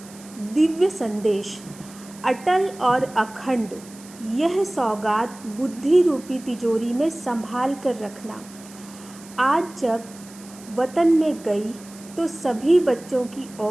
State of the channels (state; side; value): noise; right; hiss, 20 dB below the sound